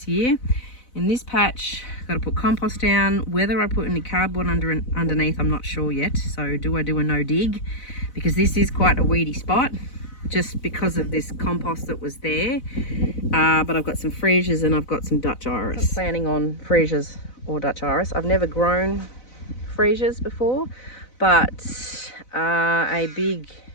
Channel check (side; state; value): right; late; 4.0 ms